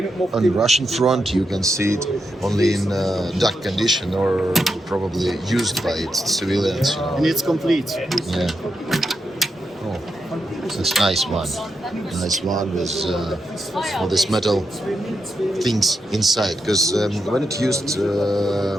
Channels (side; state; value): both; normal; correlation 0.85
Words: on the Russian front you can see it only in dark condition or probably used by its civilians. You know. And it's complete. Yeah. Oh, that's a nice one. Nice one with all this metal things inside. Because when it's used